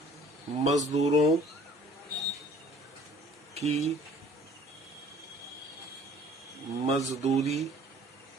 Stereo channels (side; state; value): both; normal; correlation 0.54